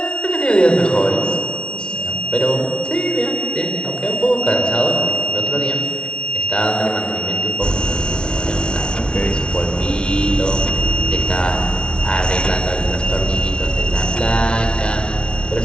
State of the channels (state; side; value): late; right; 0.056 ms